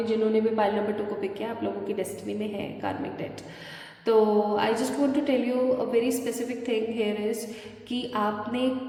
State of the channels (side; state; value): both; identical; correlation 1.00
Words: जिन्होंने भी पाइल नंबर 2 को पिक किया, आप लोगों की डेस्टिनी में है कार्मिक डेट। तो I just want to tell you a very specific thing here is कि आपने